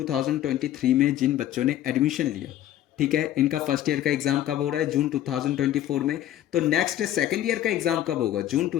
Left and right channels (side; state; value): right; quieter; 12.5 dB